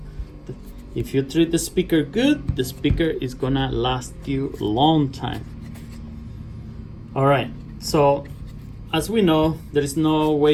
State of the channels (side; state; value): both; identical; correlation 1.00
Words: if you treat the speaker good, the speaker is gonna last you a long time. All right, so as we know, there is no